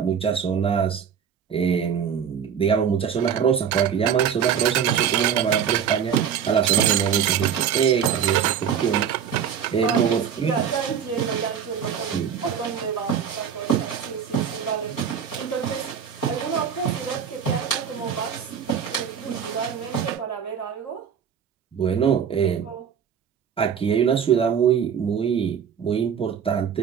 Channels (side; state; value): left; quieter; 7.9 dB